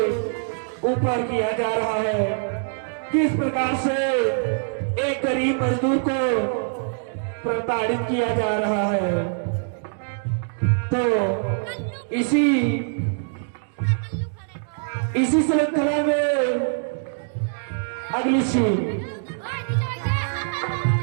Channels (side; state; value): left; silent; digital silence